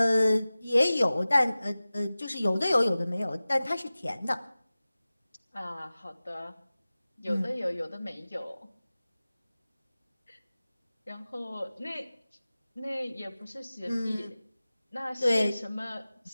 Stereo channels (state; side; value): inverted; both; correlation -0.97